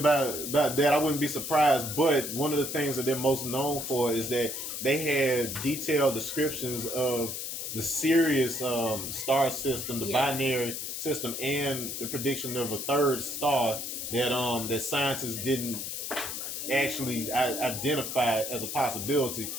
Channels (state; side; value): noise; left; hiss, 5 dB below the sound